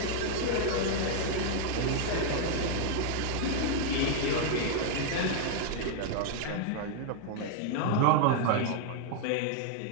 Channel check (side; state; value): both; different; correlation 0.00